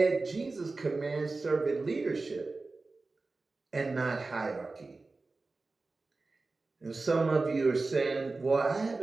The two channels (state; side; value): quieter; left; 3.6 dB